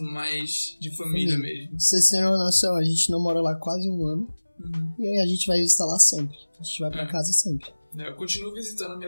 mais de família mesmo. Vocês terem uma noção, a gente não mora lá quase 1 ano. E aí a gente vai visitar lá sempre. A gente vai pra casa sempre. Eu continuo visitando a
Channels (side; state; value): both; inverted; correlation -1.00